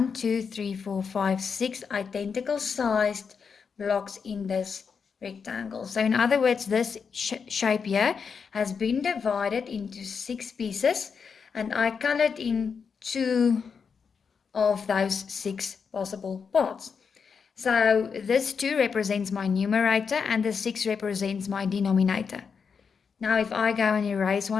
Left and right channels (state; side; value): quieter; right; 6.0 dB